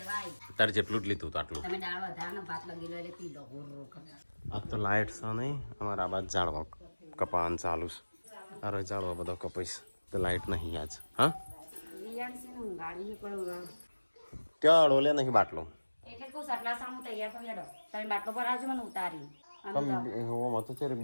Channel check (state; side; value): inverted; both; correlation -1.00